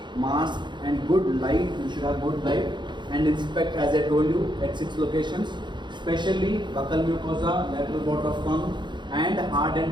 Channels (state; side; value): late; left; 0.22 ms